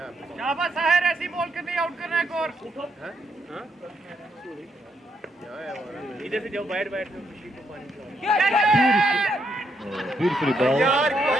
शाबाश साहिर ऐसी बॉल कर नहीं आउट करना है और इधर से जाओ बैठ बैठ बशीर को पानी Beautifully ball.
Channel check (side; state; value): both; normal; correlation 0.77